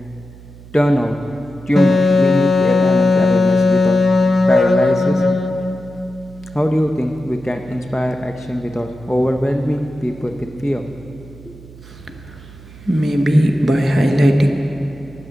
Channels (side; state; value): right; noise; hum, 19 dB below the sound